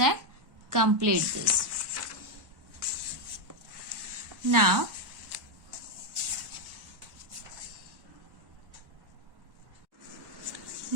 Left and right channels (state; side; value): late; left; 1.1 ms